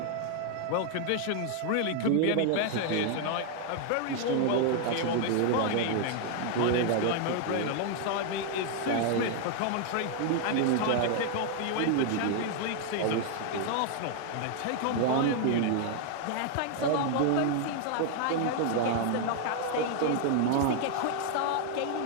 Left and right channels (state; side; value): different; both; correlation 0.00